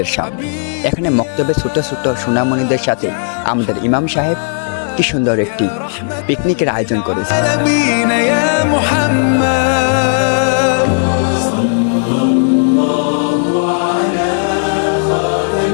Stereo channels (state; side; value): silent; right; digital silence